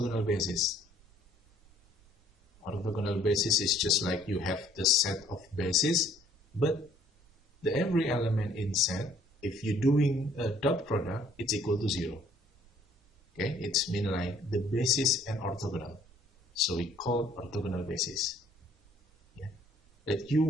basis? Orthogonal basis is just like you have the set of bases, but the every element in set, if you're doing a dot product, it's equal to 0. Okay, it's mean like the basis and orthogonal. So we call orthogonal basis. Yeah. That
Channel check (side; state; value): both; normal; correlation 0.60